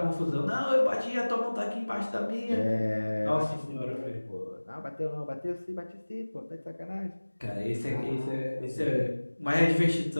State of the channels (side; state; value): both; inverted; correlation -1.00